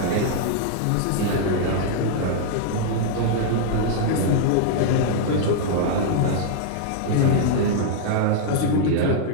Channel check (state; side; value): different; both; correlation -0.01